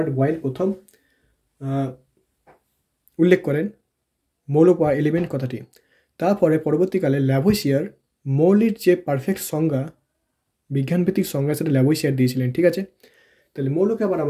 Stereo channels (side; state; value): both; identical; correlation 1.00